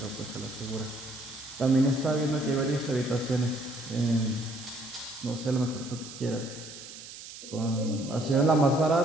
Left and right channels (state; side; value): noise; right; hiss, 14 dB below the sound